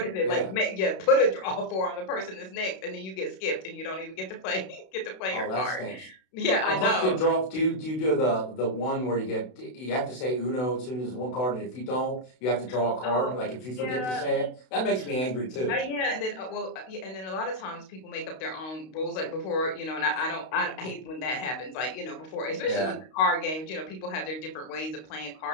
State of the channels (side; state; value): right; late; 32 ms